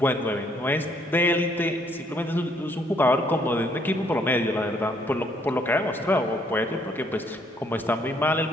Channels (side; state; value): both; normal; correlation 0.67